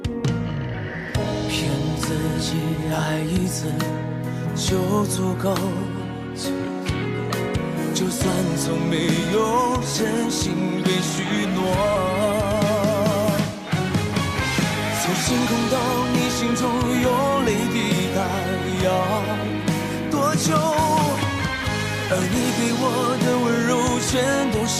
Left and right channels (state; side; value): identical; both; correlation 1.00